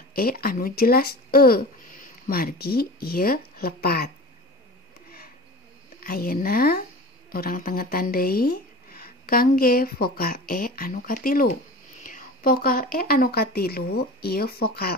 anu jelas margi ieu lepat. Ayeuna urang tengetan deui kangge vokal anu katilu. Vokal anu katilu ieu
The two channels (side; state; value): both; normal; correlation 0.35